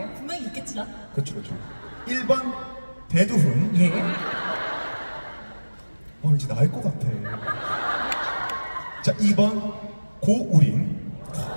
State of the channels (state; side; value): inverted; both; correlation -1.00